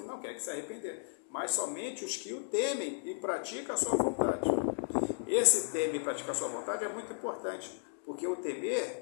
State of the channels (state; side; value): silent; right; digital silence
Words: mas somente os que o temem e praticam a sua vontade. Esse temer e praticar a sua vontade é muito importante, porque o